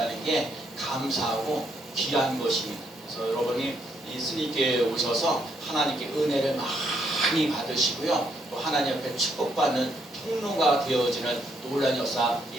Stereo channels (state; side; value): normal; both; correlation 0.73